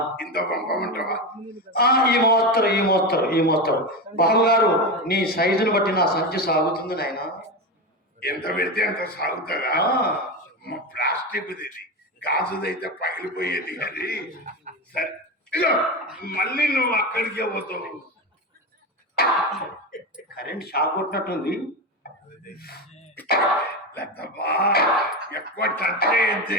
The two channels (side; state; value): both; normal; correlation 0.18